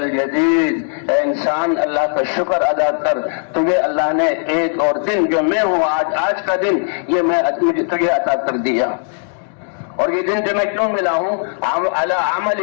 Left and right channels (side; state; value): right; silent; digital silence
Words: اے انسان اللہ کا شکر ادا کر، تجھے اللہ نے ایک اور دن جو میں ہوں آج کا دن یہ میں تجھے عطا کر دیا، اور یہ دن جو میں کیوں ملا ہوں علی